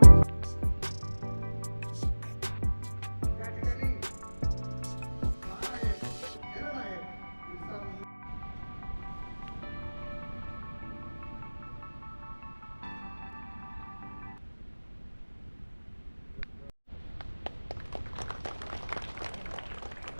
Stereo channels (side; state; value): both; inverted; correlation -1.00